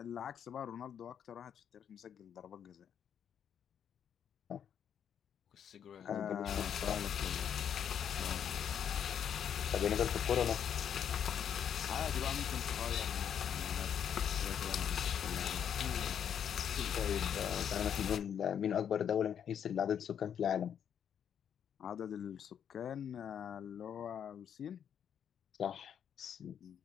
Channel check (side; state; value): right; quieter; 8.6 dB